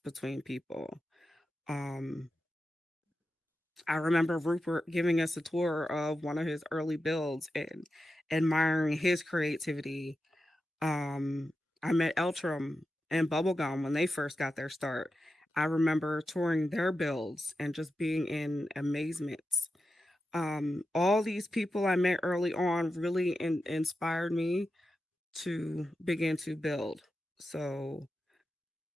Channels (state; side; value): normal; both; correlation 0.90